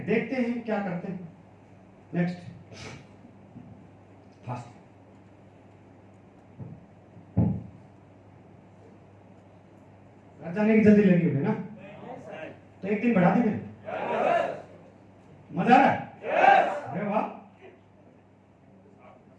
देखते हैं क्या करते हैं। Next fast. घर जाने की जल्दी लगी होगी ना, तो एक दिन बढ़ा देंगे। मजा आ रहा है? अरे वाह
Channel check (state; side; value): identical; both; correlation 1.00